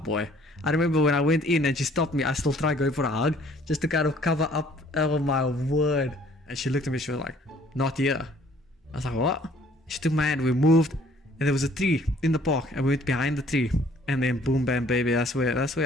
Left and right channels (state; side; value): normal; both; correlation 0.59